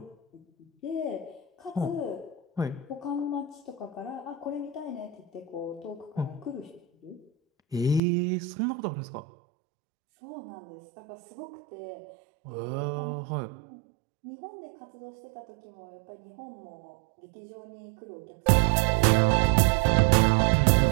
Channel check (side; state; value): left; drops out; at 8.0 s